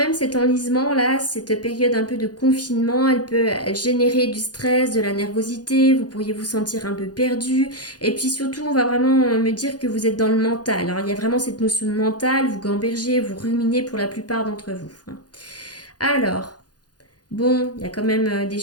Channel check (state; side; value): late; right; 0.69 ms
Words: cet enlisement là, cette période un peu de confinement, elle générer du stress, de la nervosité, vous pourriez vous sentir un peu perdu. Et puis surtout, on va vraiment me dire que vous êtes dans le mental, hein. Il y a vraiment cette notion de mental, vous gambergez, vous ruminez pour la plupart d'entre vous, hein. Alors, bon, il y a quand même des